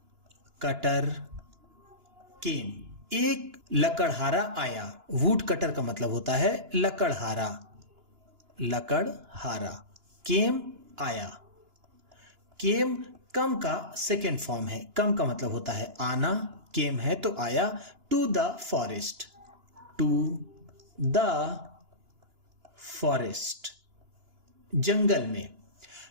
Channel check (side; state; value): left; late; 2.9 ms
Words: cutter केम एक लकड़हारा आया। वुड कटर का मतलब होता है लकड़हारा, लकड़हारा। केम आया, केम कम का सेकेंड फॉर्म है, कम का मतलब होता है आना, केम है तो आया। To the forest, to the forest जंगल में।